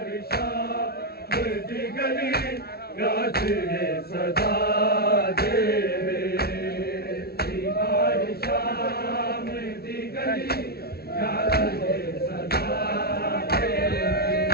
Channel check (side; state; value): right; late; 0.45 ms